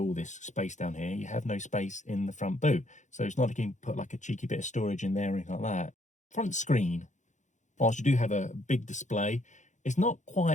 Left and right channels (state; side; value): late; right; 0.35 ms